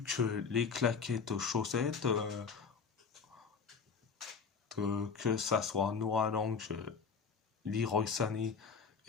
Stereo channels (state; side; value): quieter; right; 5.6 dB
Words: que les claquettes aux chaussettes, que ça soit Noah Lang, Leroy Sané